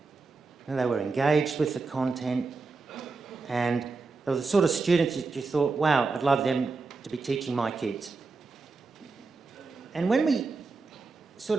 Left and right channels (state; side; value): quieter; left; 4.1 dB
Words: and they were engaged with the content, and they were the sort of students that you thought, wow, I'd love them to be teaching my kids. And when we sort